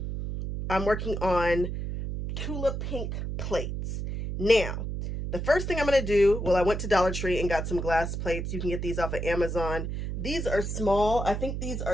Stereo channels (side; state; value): right; noise; hum, 4 dB below the sound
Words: I'm working on Tula Pink plates. Now, the first thing I'm going to do, well, I went to Dollar Tree and got some glass plates. You can get these off of Amazon. These are small. I think these